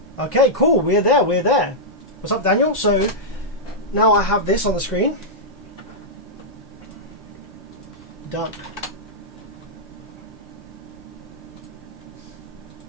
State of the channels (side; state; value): both; normal; correlation -0.08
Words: Okay, cool. We're there. What's up, Daniel? So now I have this on the screen. Done.